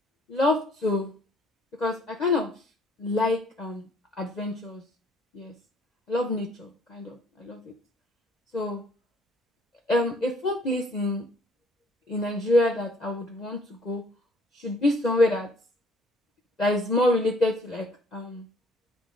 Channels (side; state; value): both; normal; correlation 0.60